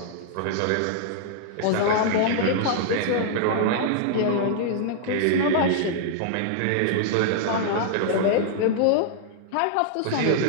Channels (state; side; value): different; both; correlation -0.01